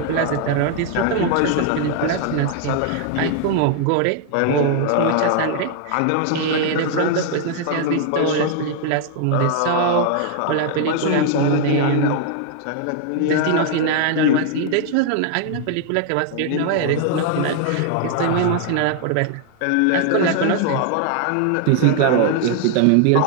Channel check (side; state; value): both; different; correlation 0.00